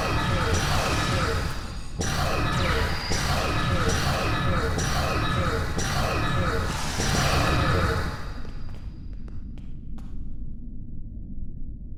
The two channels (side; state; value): both; identical; correlation 1.00